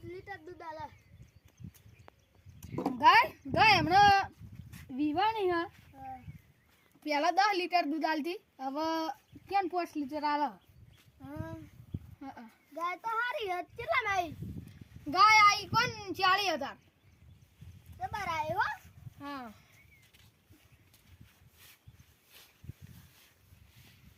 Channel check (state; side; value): identical; both; correlation 1.00